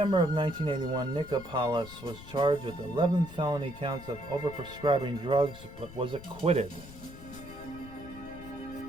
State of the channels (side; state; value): left; noise; rumble, 16 dB below the sound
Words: of 1981, Nikopoulos was charged with 11 felony counts of overprescribing drugs but was acquitted.